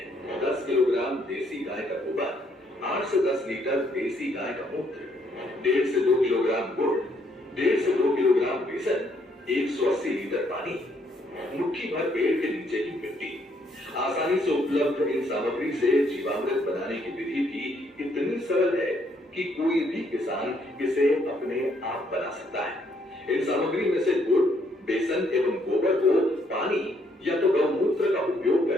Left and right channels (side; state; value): both; normal; correlation 0.70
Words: 10 किलोग्राम देसी गाय का गोबर, 8 से 10 लीटर देसी गाय का मूत्र, 1.5 से 2 किलोग्राम गुड़, 1.5 से 2 किलोग्राम बेसन, 180 लीटर पानी, मुट्ठी भर पेड़ के नीचे की मिट्टी। आसानी से उपलब्ध इन सामग्री से जीवामृत बनाने की विधि भी इतनी सरल है कि कोई भी किसान इसे अपने आप बना सकता है। इन सामग्री में से गुड़, बेसन एवं गोबर को पानी या तो गौमूत्र का उपयोग